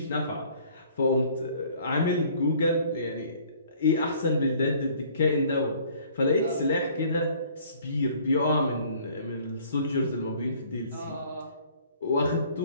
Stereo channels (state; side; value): inverted; both; correlation -0.55